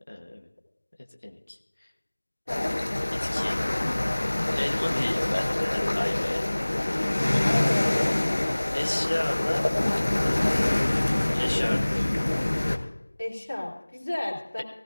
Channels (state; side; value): inverted; both; correlation -1.00